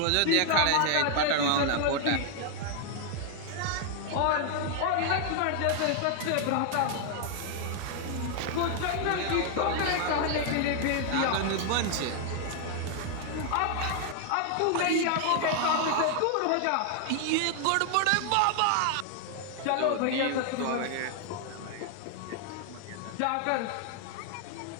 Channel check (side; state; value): both; different; correlation 0.00